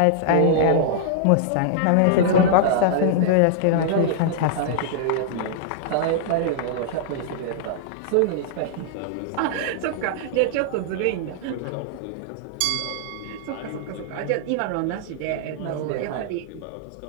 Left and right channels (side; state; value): both; different; correlation -0.01